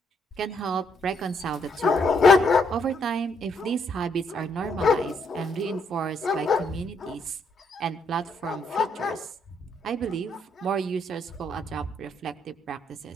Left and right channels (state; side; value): normal; both; correlation 0.73